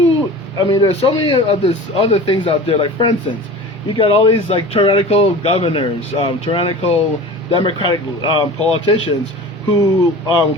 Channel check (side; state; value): both; normal; correlation 0.37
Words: so many of these other things out there. Like, for instance, you got all these tyrannical governors, tyrannical Democratic politicians who